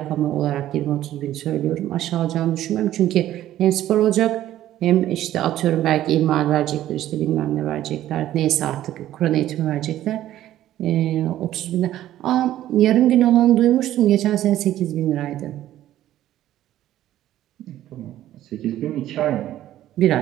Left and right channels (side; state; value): left; quieter; 13.1 dB